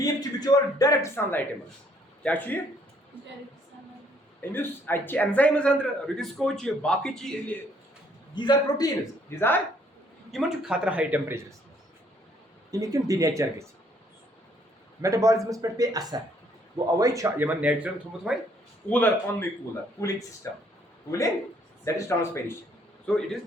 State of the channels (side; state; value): both; normal; correlation 0.65